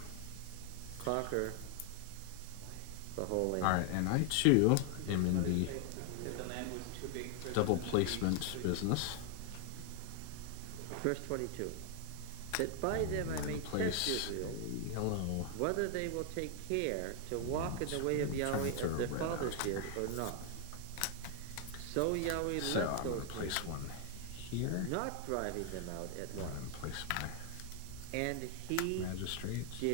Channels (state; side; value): different; both; correlation 0.00